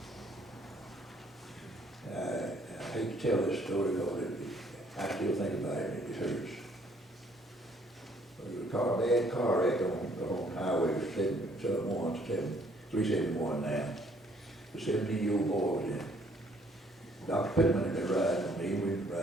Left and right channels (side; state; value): both; normal; correlation 0.64